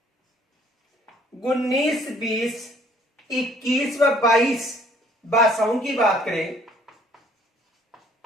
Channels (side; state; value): both; normal; correlation 0.60